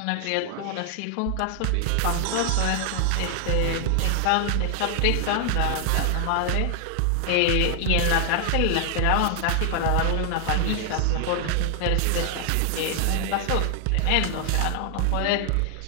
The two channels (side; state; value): both; different; correlation 0.00